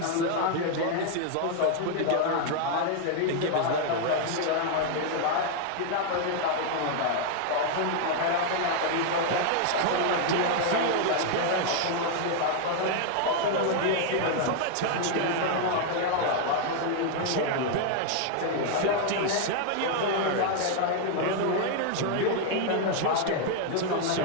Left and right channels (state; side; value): different; both; correlation 0.00